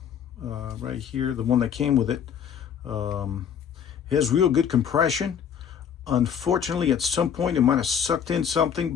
right here, the one that came with it. It has real good compression. Unfortunately, at some point it might have sucked in something,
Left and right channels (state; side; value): quieter; right; 8.2 dB